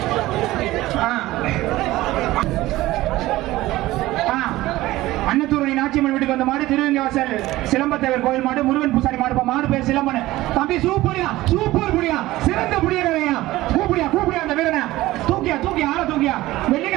அன்னத்தூரணி நாச்சியம்மன் வீட்டுக்கு வந்த மாடு. திருவங்கவாசல் சிலம்பத்தேவர் கோயில் மாடு. முருகன் பூசாரி மாடு. மாடு பேர் சிலம்பன். தம்பி சூப்பரியா, சூப்பர் புடியா, சிறந்த புடியா. கூப்பிடியா கூப்பிடியா அந்த வீரனை. தூக்கியா தூக்கியா, ஆள தூக்கியா.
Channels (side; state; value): left; quieter; 17.3 dB